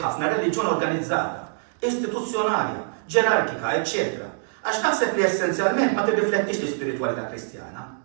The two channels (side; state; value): left; silent; digital silence